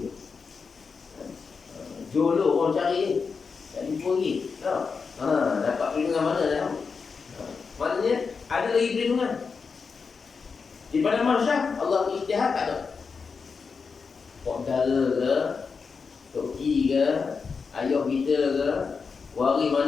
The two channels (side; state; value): right; quieter; 5.2 dB